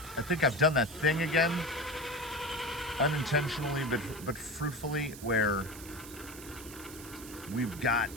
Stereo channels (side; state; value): right; noise; hiss, 15 dB below the sound